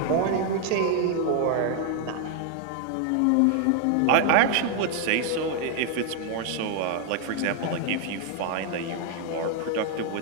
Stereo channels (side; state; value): both; different; correlation 0.00